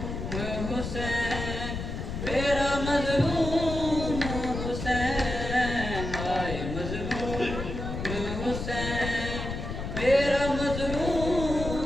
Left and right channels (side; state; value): left; noise; rumble, 5 dB below the sound